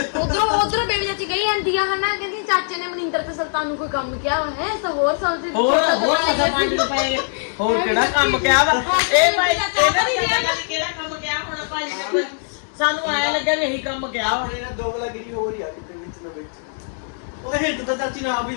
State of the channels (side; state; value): right; silent; digital silence